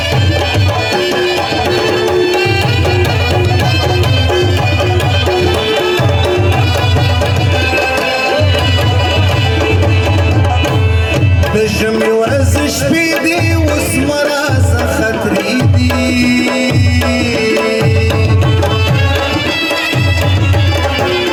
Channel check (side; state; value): both; identical; correlation 1.00